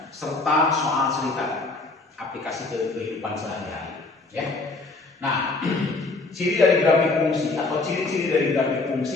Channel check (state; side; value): quieter; right; 3.5 dB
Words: serta soal cerita. Aplikasi kehidupan sehari-hari, ya. Nah, ciri dari grafik fungsi atau ciri-ciri dari grafik